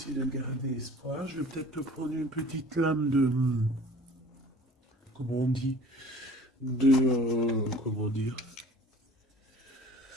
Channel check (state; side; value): normal; both; correlation 0.47